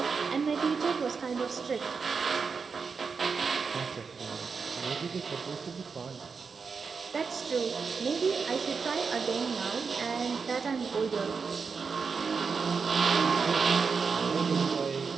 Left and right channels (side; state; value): left; quieter; 5.3 dB